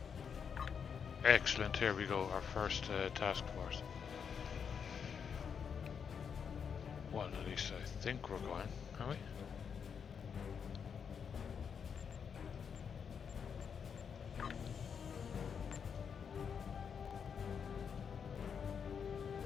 Excellent, here we go, our first task force. Well, at least I think we're going, are we?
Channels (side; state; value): right; quieter; 6.9 dB